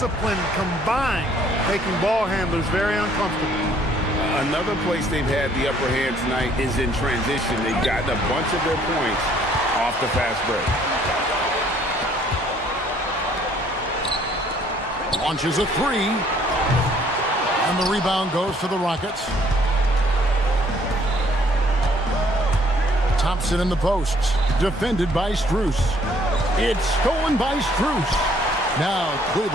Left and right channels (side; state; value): both; normal; correlation 0.62